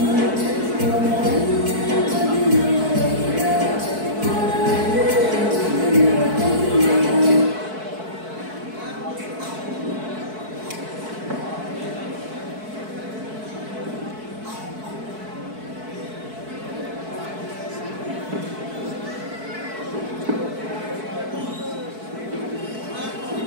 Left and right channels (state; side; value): late; left; 4.6 ms